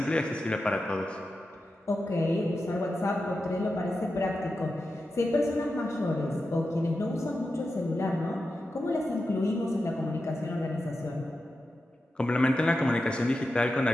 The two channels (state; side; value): normal; both; correlation 0.90